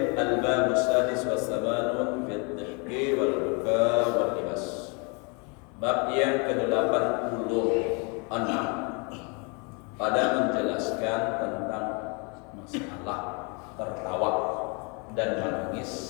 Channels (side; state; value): right; quieter; 33.2 dB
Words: al-bab as-sadis wa samanun fi ad-dhihki wal buka wal libas. Bab yang ke-86 pada menjelaskan tentang masalah tertawa dan menangis